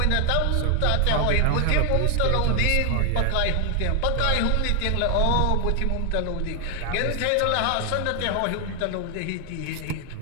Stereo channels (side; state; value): both; different; correlation 0.01